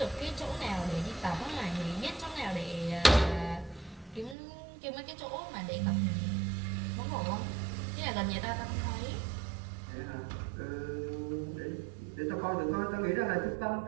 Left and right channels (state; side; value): drops out; left; at 4.4 s